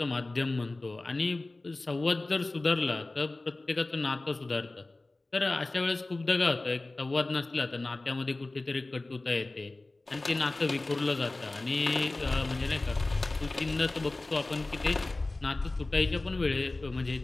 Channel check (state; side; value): quieter; right; 3.0 dB